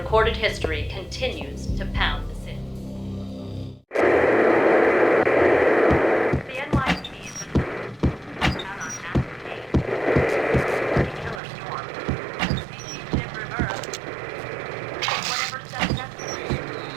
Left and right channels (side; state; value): left; drops out; at 11.4 s